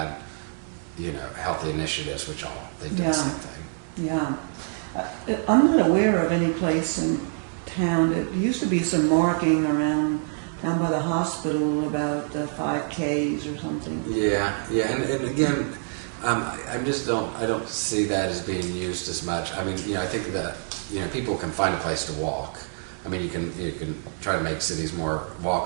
healthy initiatives, which they do the same thing. Yeah. I'm not aware of any place in town. There used to be some marking around down by the hospital about 5Ks or something. Yeah, and again, I just I don't see that as being used as much. I mean, I think that, people can find a place to walk. I mean, you can try to make cities more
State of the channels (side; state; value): left; silent; 61 dB below the other